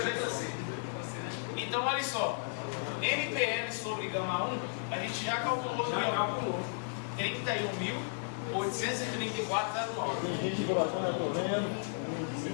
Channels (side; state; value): right; silent; digital silence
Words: foi assim. Então, olha só. MPL sobre gama 1, a gente já calculou. 31.834,09. Tem gente de coração, eu tô vendo.